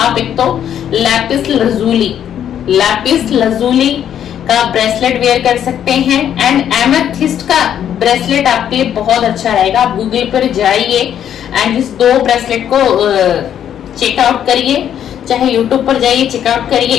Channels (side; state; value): right; quieter; 9.8 dB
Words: एक तो लैपिस लजूली का ब्रेसलेट वेयर कर सकते हैं। एंड एमेथिस्ट का ब्रेसलेट आपके लिए बहुत अच्छा रहेगा। आप गूगल पर जाइए एंड इस दो ब्रेसलेट को चेकआउट करिए, चाहे यूट्यूब पर जाइए चेकआउट करिए,